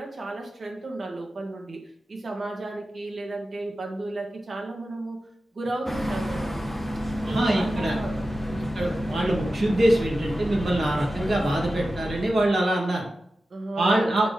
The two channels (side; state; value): both; normal; correlation 0.93